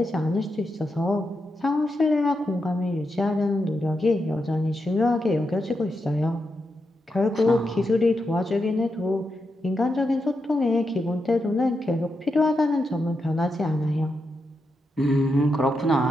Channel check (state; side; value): normal; both; correlation 0.86